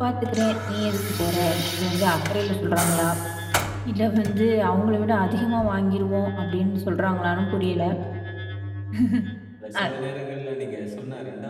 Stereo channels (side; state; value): both; identical; correlation 1.00